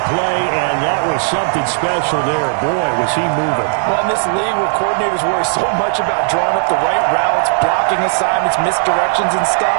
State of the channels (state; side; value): silent; left; digital silence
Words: play, and that was something special there. Boy, was he moving. Well, in this league where coordinators worry so much about drawing up the right routes, blocking assignments, misdirections and